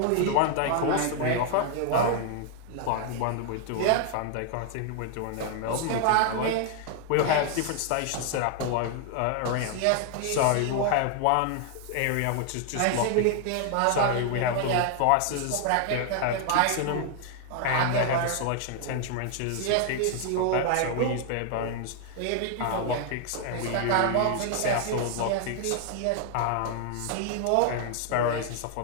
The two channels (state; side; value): different; both; correlation 0.00